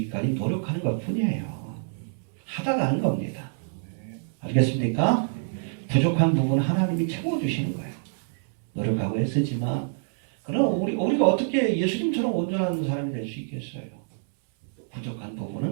노력하는 것 뿐이에요. 하다가 하는 겁니다. 알겠습니까? 부족한 부분은 하나님이 채워주시는 거예요. 노력하고 애쓰지만 그럼 우리가 어떻게 예수님처럼 온전한 사람이 될 수 있겠어요? 부족한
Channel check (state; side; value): silent; left; 61 dB below the other